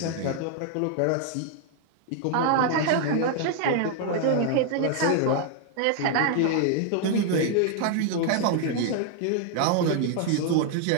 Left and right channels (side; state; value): both; different; correlation 0.00